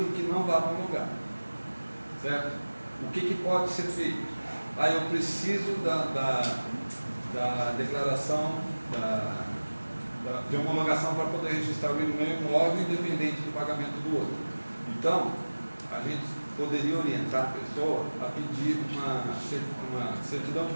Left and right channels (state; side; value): inverted; both; correlation -1.00